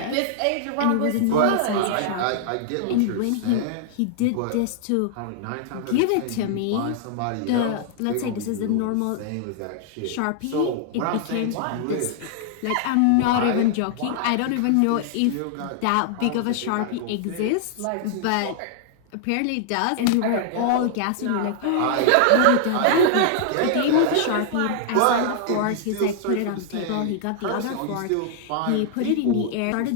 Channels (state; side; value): different; both; correlation -0.01